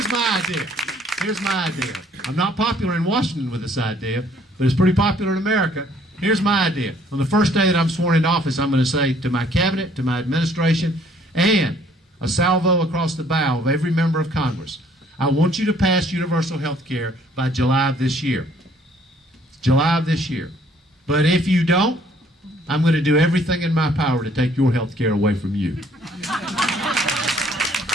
my idea. Here's my idea. I'm not popular in Washington with this idea, but it's pretty popular in America. Here's my idea. On the first day that I'm sworn into office, I'm going to say to my cabinet, to my administration, and a salvo across the bow of every member of Congress, I want you to pass universal health care by July of this year. July of this year. But if you don't, I'm going to do everything in my power to take your health care away from you.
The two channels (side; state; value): both; normal; correlation 0.61